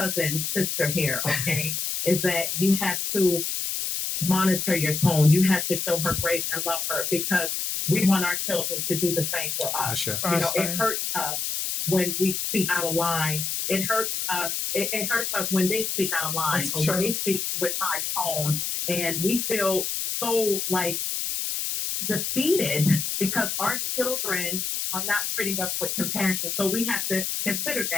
sister here, okay, is that you have to monitor your tone. You have to show her grace and love her because we want our children to do the same for us. Ashe. You know, it hurts us when we speak out of line. It hurts us. It hurts us when they speak out of line That's or true. when they speak with high tone, and we feel so like defeated because our children are not treating us with compassion. So we have to consider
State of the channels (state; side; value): noise; left; hiss, 2 dB below the sound